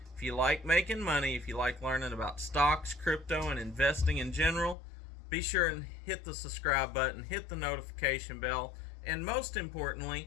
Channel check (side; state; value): right; drops out; at 4.8 s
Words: If you like making money, if you like learning about stocks, crypto, and investing in general, be sure and hit the subscribe button, hit the notification bell, and most